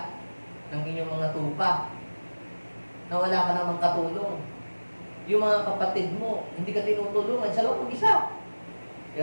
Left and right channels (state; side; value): inverted; both; correlation -1.00